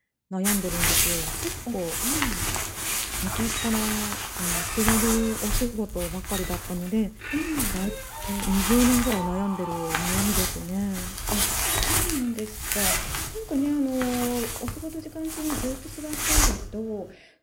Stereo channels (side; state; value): both; identical; correlation 1.00